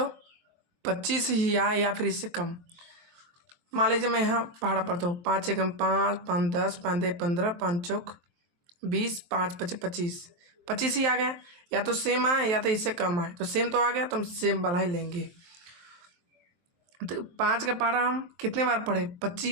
25 ही आए, या फिर इससे कम। मान लीजिए मैं यहाँ पहाड़ा पढ़ता हूँ, 5 एकम 5, 5 10, 5 दे 15, 5 चौक 20, 5 पचे 25, 25 ही आ गया। या तो सेम आए या तो इससे कम आए, तो सेम तो आ गया तो हम सेम वाला ही लेंगे। तो 5 का पहाड़ा हम कितने बार पढ़े?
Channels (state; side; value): late; left; 23 ms